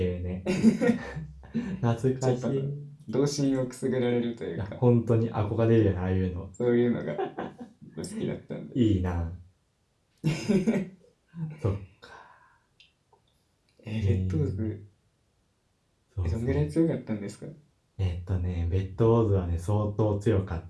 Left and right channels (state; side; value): identical; both; correlation 1.00